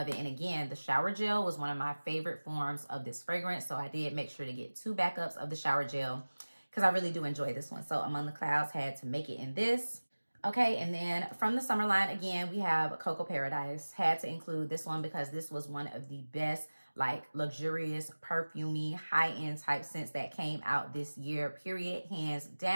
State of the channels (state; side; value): inverted; both; correlation -1.00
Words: it. And again, the shower gel was one of my favorite forms of this fragrance. So I did make sure to get 2 backups of the shower gel because I really do enjoy this one. So Among the Clouds had to make it in this. Okay, and then from the summer line, again, we have Coco Paradise. Had to include this one because this was one of the best, like, luxurious, perfumey, high-end type scents that came out this year, period, hands